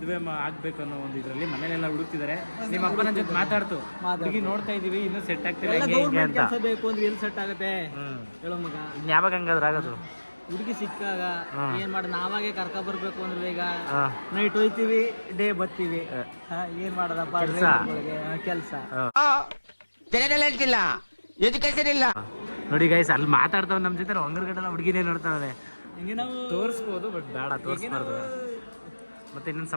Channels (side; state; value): both; inverted; correlation -1.00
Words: ಆಗ್ಬೇಕು ಅನ್ನೋ ಒಂದು ಇದರಲ್ಲಿ ಮನೇಲೆಲ್ಲ ಹುಡುಕ್ತಿದ್ದಾರೆ. ನಿಮ್ಮ ಅಪ್ಪನ ಜೊತೆ ಮಾತಾಡ್ತು, ಹುಡುಗಿ ನೋಡ್ತಾ ಇದೀವಿ, ಇನ್ನೂ ಸೆಟ್ ಆಗ್ತಿಲ್ಲ ಹಿಂಗೆ ಅಂತ. ಕೆಲಸ ಬೇಕು ಅಂದ್ರೆ ಎಲ್ಲಿ ಸೆಟ್ ಆಗುತ್ತೆ ಹೇಳೋ ಮಗ. ಇನ್ ಯಾವಾಗ ಹಂಗಾದ್ರೆ ಆಗೋದು? ಹುಡುಗಿ ಸಿಕ್ಕಾಗ ಏನ್ ಮಾಡ, ನಾವಾಗೆ ಕರ್ಕ ಬರ್ಬೇಕು ಅಂದ್ರೆ ಈಗ ನೈಟ್ ಹೋಯ್ತಿವಿ, ಡೇ ಬರ್ತೀವಿ. ಏನ್ ಮಾಡೋದಪ್ಪ ಕೆಲಸ. ನೋಡಿ ಗೈಸ್, ಅಲ್ಲಿ ಮಾತಾಡ್ತಾವ ನಮ್ ಜೊತೆ, ಹೊಂಗರ್ಗಡೆಲ್ಲ ಹುಡುಗಿನೇ ನೋಡ್ತಾವೆ. ಹಿಂಗೆ ನಾವು ತೋರಿಸ್ಬೋದು, ಬಟ್ ಬೇಡ ತೋರಿಸ್ಬಾರ್ದು. ಮತ್ತೆ ಇನ್ನೊಂದು